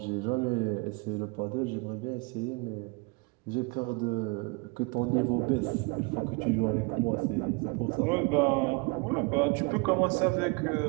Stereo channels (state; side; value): quieter; left; 29.6 dB